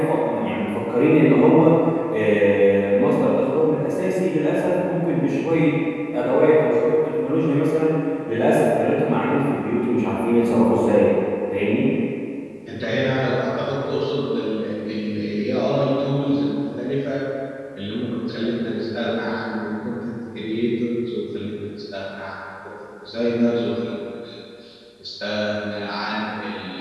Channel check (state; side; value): identical; both; correlation 1.00